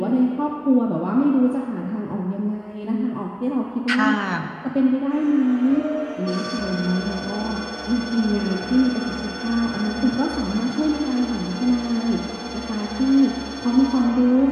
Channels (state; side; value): identical; both; correlation 1.00